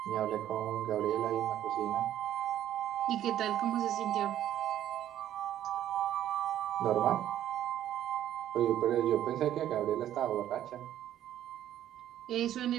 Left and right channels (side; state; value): left; quieter; 11.7 dB